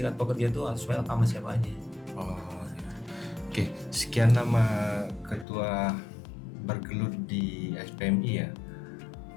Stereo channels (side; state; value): right; drops out; at 5.5 s